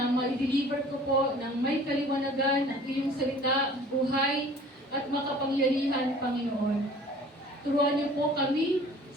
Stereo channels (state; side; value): normal; both; correlation 0.48